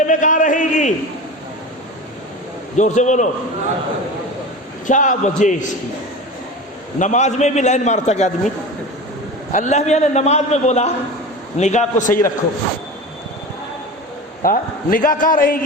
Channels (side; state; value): both; normal; correlation 0.30